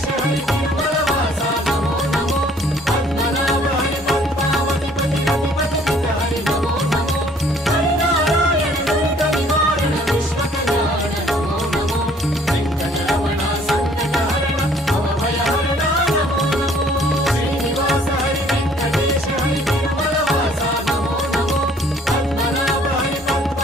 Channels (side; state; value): both; normal; correlation 0.58